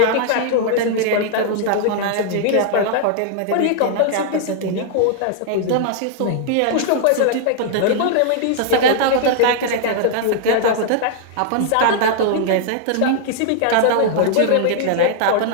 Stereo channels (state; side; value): different; both; correlation -0.01